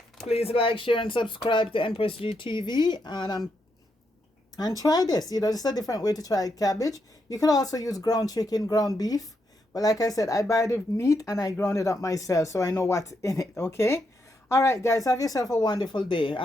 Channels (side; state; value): both; normal; correlation 0.81